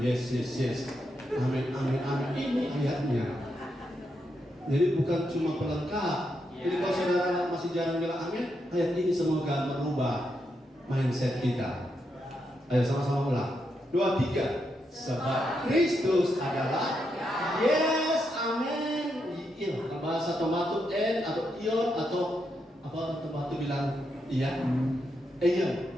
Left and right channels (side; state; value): both; normal; correlation 0.82